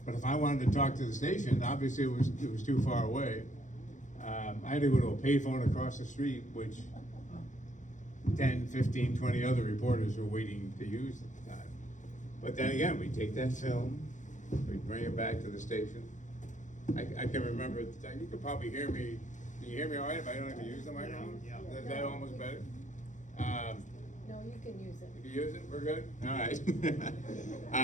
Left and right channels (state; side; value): late; right; 0.36 ms